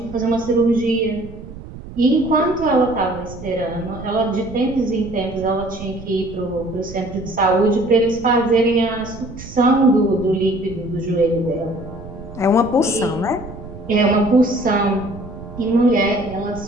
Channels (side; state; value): right; noise; rumble, 14 dB below the sound